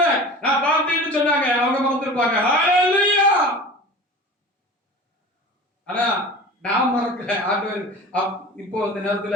நான் பார்த்தேன்னு சொன்னாங்க. அவங்க மறந்துருப்பாங்க. ஹல்லேலூயா. ஆனா நான் மறக்கல. ஆண்டவர் இப்போ அந்த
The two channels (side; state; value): both; normal; correlation 0.37